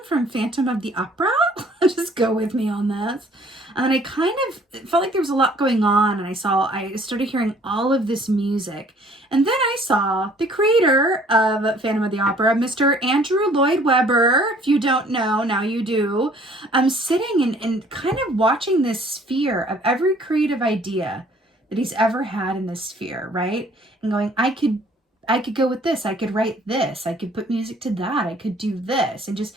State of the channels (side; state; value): both; normal; correlation 0.57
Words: from Phantom of the Opera. Just go with me on this. And I kind of felt like there was a lot going on, and I started hearing all of this music. And then I saw the creator of Phantom of the Opera, Mr. Andrew Lloyd Webber. If you don't know, now you do. I'm sitting and kind of watching this sphere of every creative idea that he's ever had in this sphere, right? And going, I could go with this. I could write this. I could put music to that. I could do this. And just